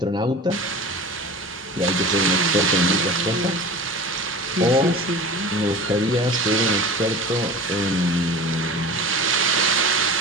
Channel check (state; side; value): normal; both; correlation 0.35